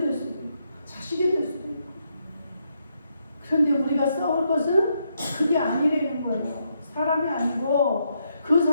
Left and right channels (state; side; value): inverted; both; correlation -0.79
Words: 수도 있고 자식이 될 수도 있고. 그런데 우리가 싸울 것은 그게 아니라는 거예요. 사람이 아니고 그